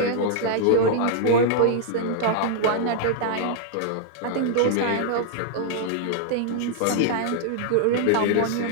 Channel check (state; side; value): different; both; correlation -0.01